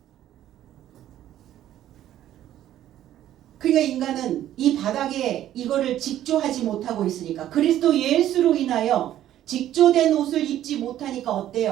그러니까 인간은 이 바닥에 이거를 직조하지 못하고 있으니까, 그리스도 예수로 인하여 직조된 옷을 입지 못하니까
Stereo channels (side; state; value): left; quieter; 12.2 dB